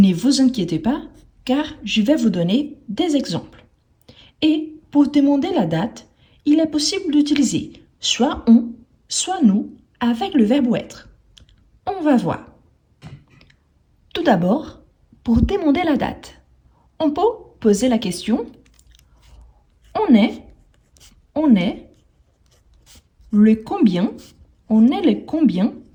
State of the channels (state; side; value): identical; both; correlation 1.00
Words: vous inquiétez pas car je vais vous donner des exemples. Et pour demander la date, il est possible d'utiliser soit on, soit nous avec le verbe être. On va voir. Tout d'abord, pour demander la date, on peut poser la question on est le combien, on est le combien.